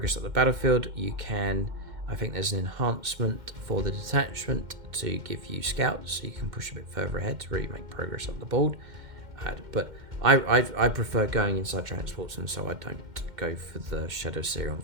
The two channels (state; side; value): late; left; 2.1 ms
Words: at the battlefield, you can, I think there's an enhancement for the detachment to give you scouts, so you can push a bit further ahead to really make progress up the board. But I prefer going inside transports, and so I don't go for the Shadowseer on